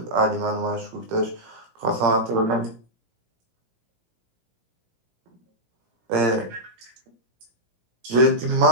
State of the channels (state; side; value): late; left; 17 ms